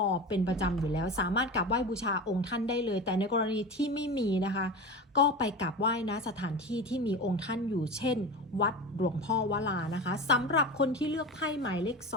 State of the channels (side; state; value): both; normal; correlation 0.28